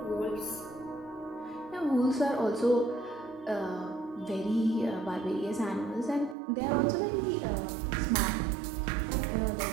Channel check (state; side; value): drops out; left; at 6.4 s